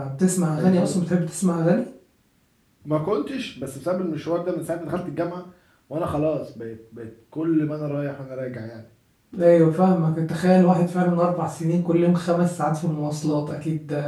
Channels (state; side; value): identical; both; correlation 1.00